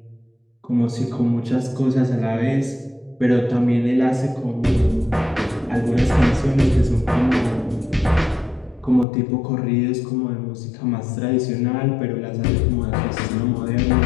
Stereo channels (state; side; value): drops out; right; at 9.1 s